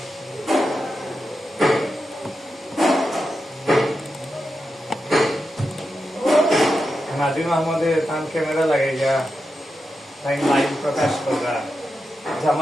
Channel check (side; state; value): both; normal; correlation 0.88